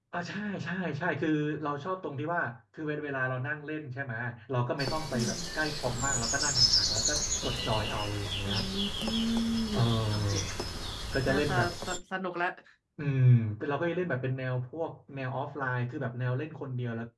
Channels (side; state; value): both; identical; correlation 1.00